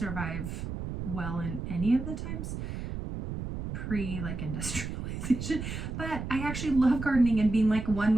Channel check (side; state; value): right; noise; rumble, 6 dB below the sound